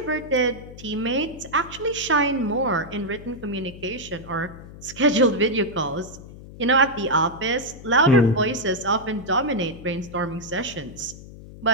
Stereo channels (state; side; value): noise; left; hum, 16 dB below the sound